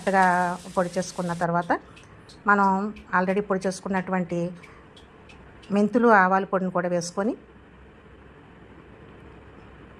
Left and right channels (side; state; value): both; identical; correlation 1.00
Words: పొడి చేసుకున్న తర్వాత మనం ఆల్రెడీ పొడి చేసుకున్నటువంటి మెంతులు, ఆవాల పొడిని కూడా వేసుకొని